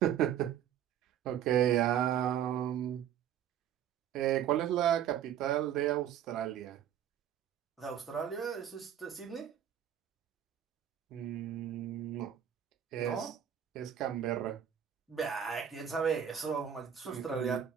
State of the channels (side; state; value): left; quieter; 9.8 dB